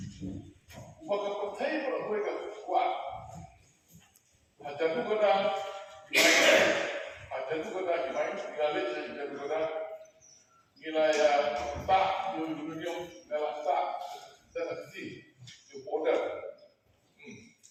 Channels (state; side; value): identical; both; correlation 1.00